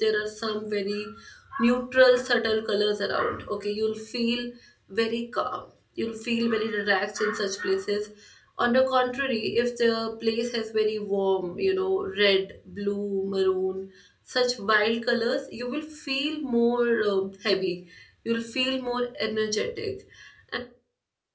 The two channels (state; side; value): identical; both; correlation 1.00